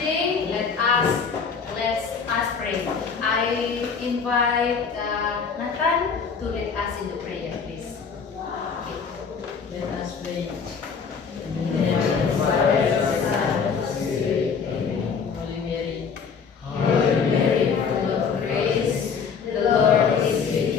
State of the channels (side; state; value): right; quieter; 6.0 dB